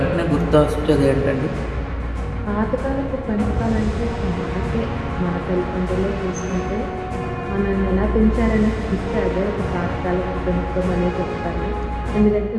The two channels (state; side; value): identical; both; correlation 1.00